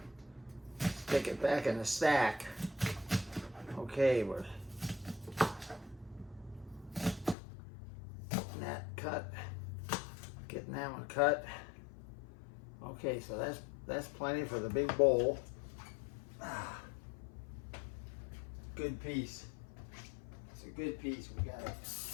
stick it back in the stack. Okay, we're getting that one cut. Okay, so that's plenty for the big bowl. Good piece. It's a good piece. We got it.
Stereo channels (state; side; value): drops out; right; at 7.4 s